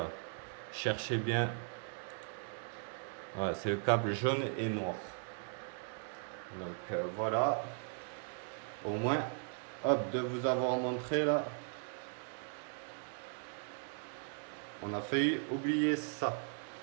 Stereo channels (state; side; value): silent; left; 52 dB below the other